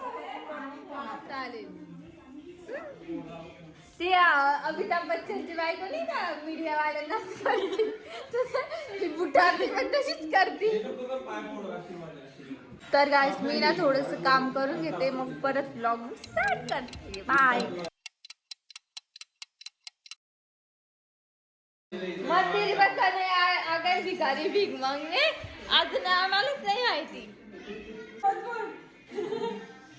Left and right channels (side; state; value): both; identical; correlation 1.00